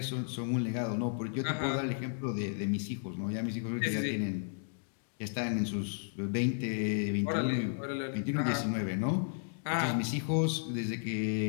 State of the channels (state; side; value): silent; right; digital silence